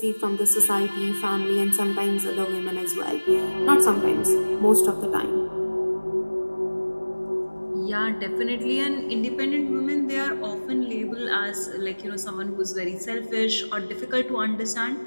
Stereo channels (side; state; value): both; inverted; correlation -1.00